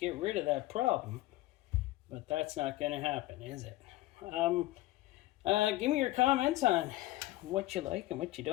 rid of that problem. But that's not going to happen, is it? Give me your comments on what you like and what you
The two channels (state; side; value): quieter; right; 17.5 dB